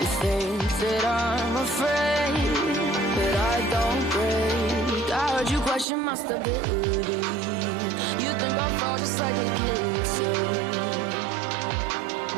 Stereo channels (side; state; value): left; drops out; at 5.9 s